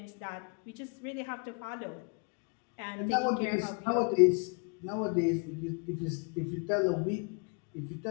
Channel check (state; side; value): quieter; right; 36.1 dB